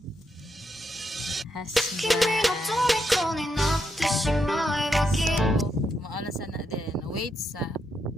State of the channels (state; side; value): normal; both; correlation 0.81